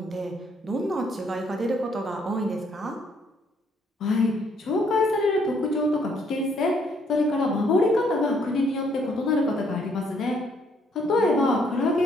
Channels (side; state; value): both; normal; correlation 0.68